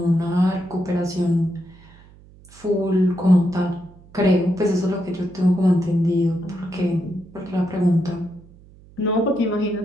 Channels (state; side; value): noise; right; hum, 24 dB below the sound